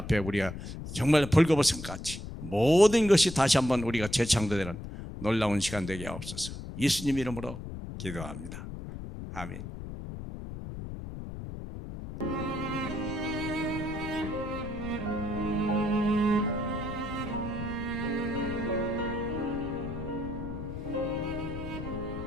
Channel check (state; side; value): noise; left; rumble, 9 dB below the sound